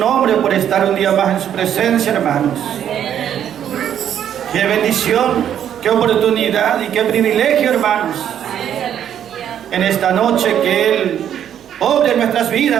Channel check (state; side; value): quieter; left; 9.8 dB